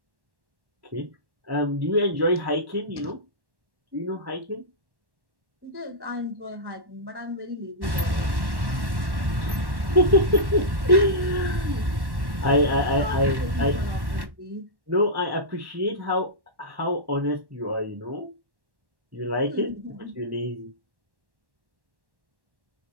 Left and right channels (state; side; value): late; left; 1.1 ms